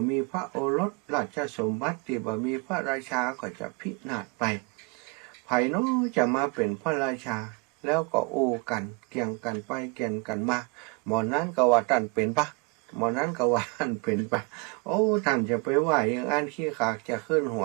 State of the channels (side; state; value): left; quieter; 31.1 dB